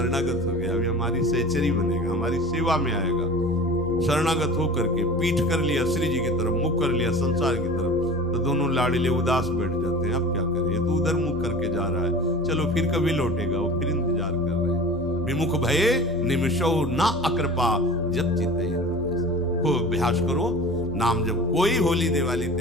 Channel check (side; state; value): both; normal; correlation 0.38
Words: हो गया, अभी हमारी सहचरी बनेगा, हमारी सेवा में आएगा। शरणागत होकर के पीठ कर लिया श्री जी की तरफ, मुख कर लिया संसार की तरफ, तो दोनों लाड़िले उदास बैठ जाते हैं। अब क्या करें, ये तो उधर मुख करके जा रहा है, चलो फिर कभी लौटेगा, वो फिर इंतजार कर रहे हैं। विमुख भये निमिषो ना अकृपा जब चिते। खूब अभ्यास करो नाम जब। कोई होली दिवाली